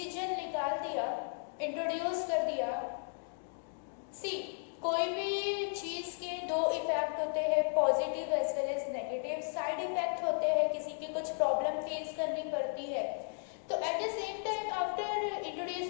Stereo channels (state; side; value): silent; right; digital silence